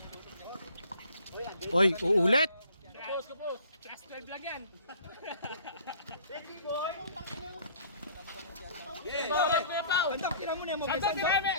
Oy, uulit. Kapos. Class 12 lang yan. Bandang tira mo na yung Santa Tirame!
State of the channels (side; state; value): both; inverted; correlation -0.54